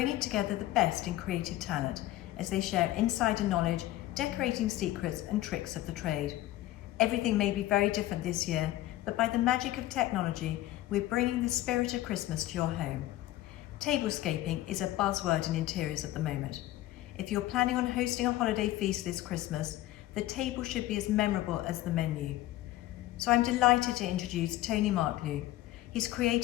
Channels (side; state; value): right; quieter; 15.5 dB